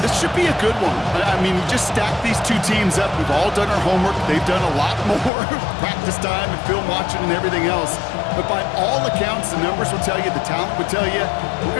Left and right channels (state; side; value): drops out; right; at 5.3 s